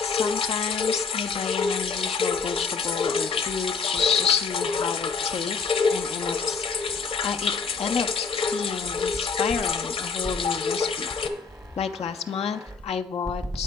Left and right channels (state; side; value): quieter; right; 5.2 dB